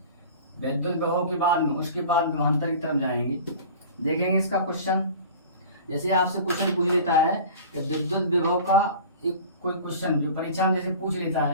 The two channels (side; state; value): both; inverted; correlation -0.40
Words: विद्युत विभव के बाद में, उसके बाद विभवांतर की तरफ जाएंगे। देखेंगे इसका क्वेश्चन। जैसे आपसे क्वेश्चन पूछ लेता है कि विद्युत विभव का एक कोई क्वेश्चन जो परीक्षा में जैसे पूछ लेता